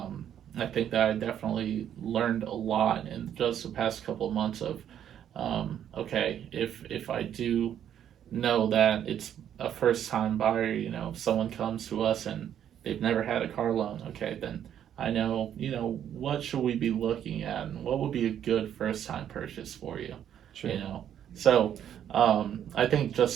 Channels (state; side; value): quieter; left; 9.8 dB